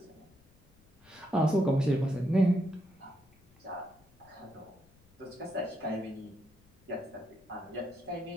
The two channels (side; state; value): left; noise; rumble, 30 dB below the sound